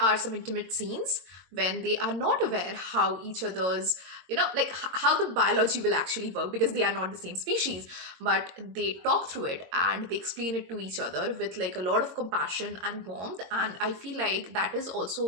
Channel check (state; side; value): late; left; 22 ms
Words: some intimate scenes when they are not aware how each other's, like how the biology will actually work, because they are not the same species, but they talk through it and they explain it to each other with like a lot of compassion and warmth. And I feel like that is